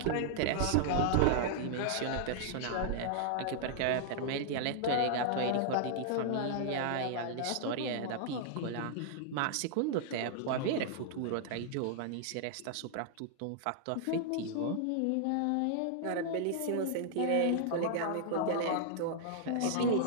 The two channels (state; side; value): different; both; correlation -0.01